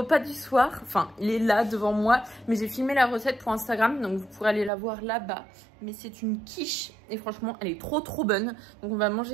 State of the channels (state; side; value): drops out; left; at 4.7 s